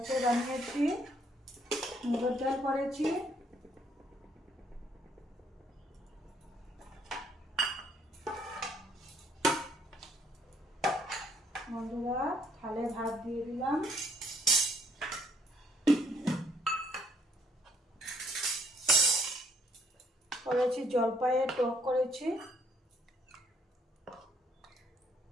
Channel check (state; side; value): normal; both; correlation 0.66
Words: বানিয়েছি মুগের ডাল করেছি। বন্ধুরা থালে ভাত দিয়ে দিলাম, করেছি জলপাইয়ের টক করেছি,